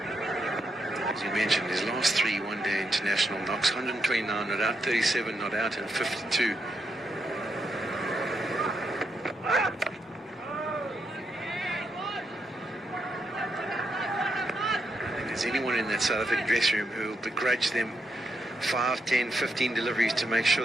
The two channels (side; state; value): both; normal; correlation 0.81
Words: As you mentioned, his last 3 one-day international knocks, 129 not out, 37 not out, and 52. There's anyone in that South African dressing room who will begrudge them 5, 10, 15 deliveries to make